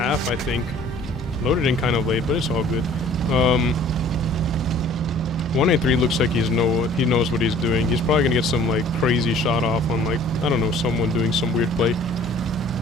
I think. Loaded in kind of late, but it's all good. 183 looks like he knows what he's doing. He's probably going to get some, like, crazy shot off on, like, I don't know, someone doing some weird play.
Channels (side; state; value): both; normal; correlation 0.52